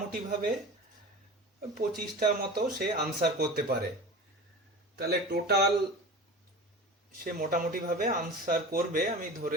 25টা মতো সে আনসার করতে পারে। তাহলে টোটাল সে মোটামুটিভাবে আনসার করবে, আমি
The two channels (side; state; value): both; normal; correlation 0.33